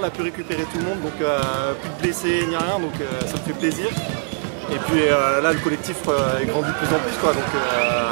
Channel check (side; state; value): left; silent; 61 dB below the other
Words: a pu récupérer tout le monde, donc plus de blessés ni rien, donc ça me fait plaisir. Et puis là, le collectif est grandi de plus en plus, quoi. Donc